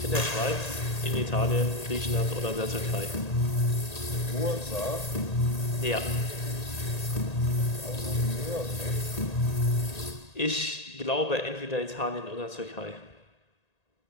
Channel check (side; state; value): right; late; 1.8 ms